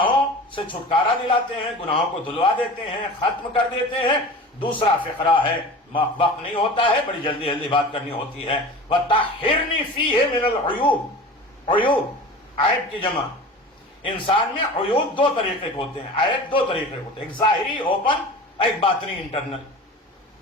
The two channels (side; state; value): both; normal; correlation 0.36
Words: سے چھٹکارا دلاتے ہیں، گناہوں کو دھلوا دیتے ہیں، ختم کر دیتے ہیں۔ دوسرا فقرہ ہے، وقت نہیں ہوتا ہے، بڑی جلدی جلدی بات کرنی ہوتی ہے، وَطَهِّرْنِي فِيهِ مِنَ الْعُيُوبِ۔ عیوب، عیب کی جمع۔ انسان میں عیوب دو طریقے کے ہوتے ہیں، عیب دو طریقے کے ہوتے ہیں، ایک ظاہری اوپن، ایک باطنی انٹرنل۔